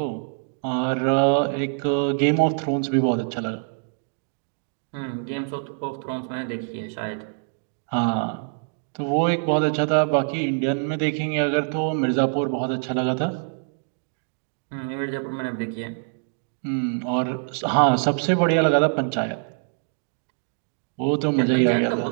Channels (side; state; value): left; silent; digital silence